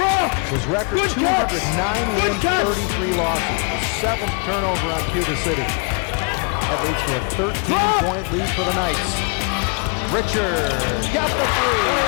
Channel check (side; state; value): right; quieter; 35.7 dB